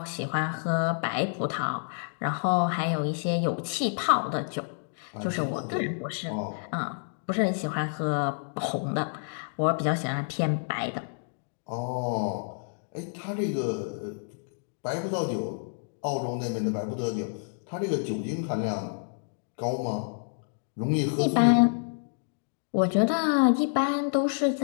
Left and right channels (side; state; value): right; silent; digital silence